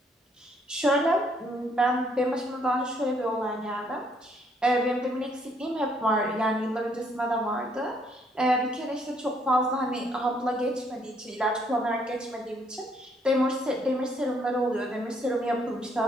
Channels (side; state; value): both; normal; correlation 0.68